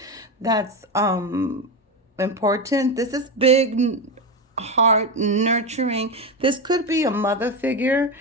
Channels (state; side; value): normal; both; correlation 0.15